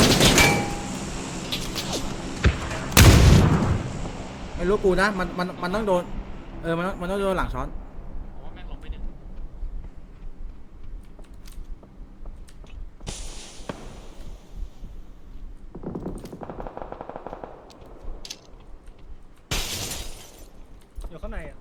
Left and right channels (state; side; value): identical; both; correlation 1.00